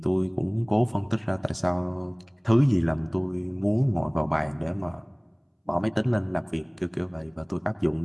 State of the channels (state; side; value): identical; both; correlation 1.00